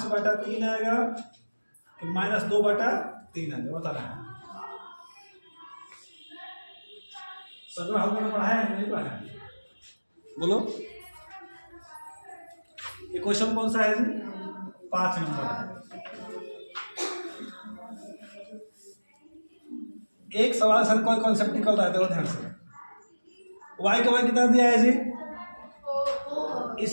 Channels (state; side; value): inverted; both; correlation -1.00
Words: आएगा, -2/3 आएगा, बता रहा है। सर हमने पढ़ाया है नहीं पढ़ाया, बोलो ये क्वेश्चन कौन सा है जी, 5 नंबर। एक सवाल सर कोई कॉन्सेप्ट निकल रहा है, देखो ध्यान से, y का मान कितना दिया है जी, इस